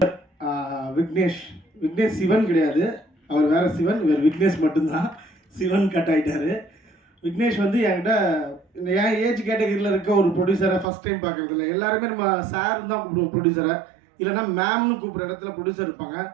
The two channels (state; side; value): drops out; left; at 10.9 s